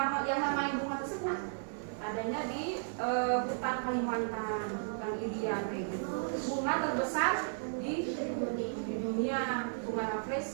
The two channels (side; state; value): left; silent; digital silence